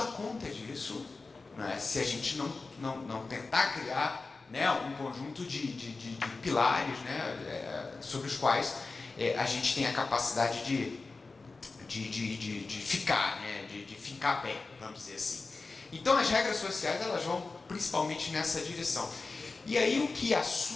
conta disso, né? Se a gente não tentar criar, né, um conjunto de pilares, né, sobre os quais a gente tem a capacidade de ficar, né, de fincar pé, vamos dizer assim. Então as regras sociais elas vão principalmente nessa direção. E aí o que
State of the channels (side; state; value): right; quieter; 3.9 dB